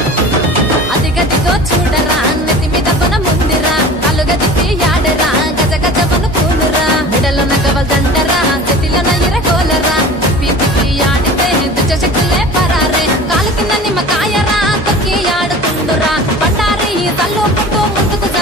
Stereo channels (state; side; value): normal; both; correlation 0.39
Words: అదిగదిగో చూడరా నెత్తి మీద బొనముందిరా కాలుగా తిప్పి ఆడరా గజ గజ వనుకూనురా మెడలో నగవల్దండరా చేతిలో ఇరగోలరా తిప్పి తిప్పి ఆడితే దుచ్చ శక్తులే పరారే కాలు కింద నిమ్మకాయరా తొక్కి ఆడుతుండురా బండారి తల్లు పుట్టు ముందుకు